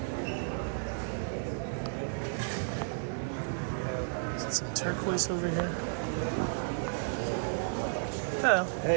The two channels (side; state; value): left; silent; digital silence